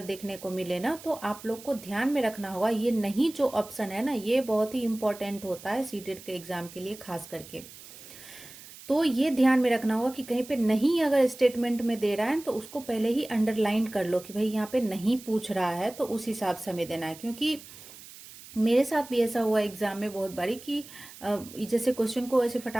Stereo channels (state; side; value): noise; right; hiss, 17 dB below the sound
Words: देखने को मिले ना, तो आप लोग को ध्यान में रखना होगा, ये नहीं जो ऑप्शन है ना, ये बहुत ही इंपॉर्टेंट होता है सीटेट के एग्जाम के लिए खास करके। तो ये ध्यान में रखना होगा कि कहीं पे नहीं अगर स्टेटमेंट में दे रहा है तो उसको पहले ही अंडरलाइन कर लो कि भाई यहाँ पे नहीं पूछ रहा है, तो उस हिसाब से हमें देना है। क्योंकि मेरे साथ भी ऐसा हुआ एग्जाम में बहुत बारी कि जैसे क्वेश्चन को ऐसे